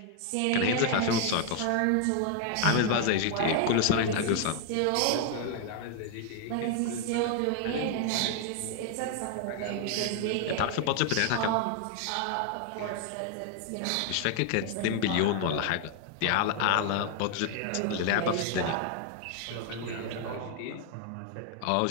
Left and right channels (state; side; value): different; both; correlation 0.00